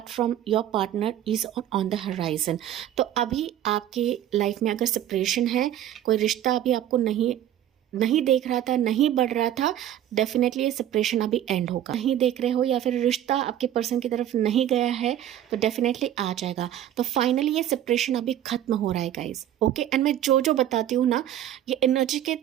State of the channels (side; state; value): left; quieter; 11.6 dB